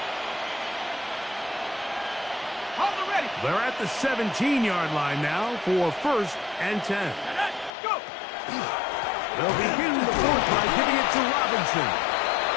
They're at the 17-yard line now for first and 10. Go! They'll begin the fourth by giving it to Robinson.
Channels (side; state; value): right; drops out; at 7.8 s